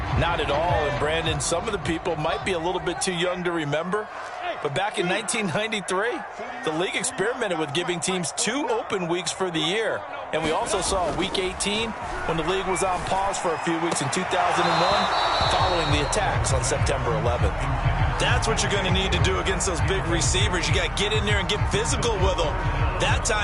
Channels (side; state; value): both; identical; correlation 1.00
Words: Not at all. And, Brandon, some of the people might be a little bit too young to remember. But back in 1993, the league experimented with giving teams 2 open weeks for the year. And we also saw Week 18 when the league was on pause for a few weeks in 2001 following the attacks on September 11th. That's what you're going to need to do against those big receivers. You got to get in there and get physical with them. That